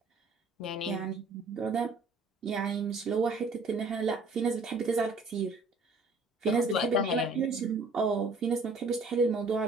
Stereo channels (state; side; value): quieter; left; 3.2 dB